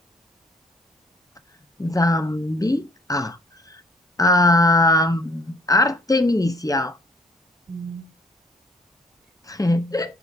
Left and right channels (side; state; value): both; normal; correlation 0.58